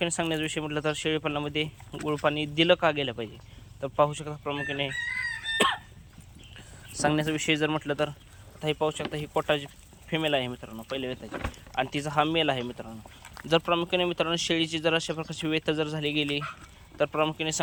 सांगण्याचा विषय म्हटलं तर शेळीपालनामध्ये गुळ पाणी दिलं का गेलं पाहिजे. तर पाहू शकता प्रामुख्याने सांगण्याचा विषय जर म्हटलं तर आता हे पाहू शकता, ही कोटाची फिमेल आहे मित्रांनो पहिल्या वेताची, आणि तिचा हा मेल आहे मित्रांनो. जर प्रामुख्याने मित्रांनो शेळीची जर अशा प्रकारची वेत जर झाली गेली तर प्रामुख्याने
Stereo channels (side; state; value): both; identical; correlation 1.00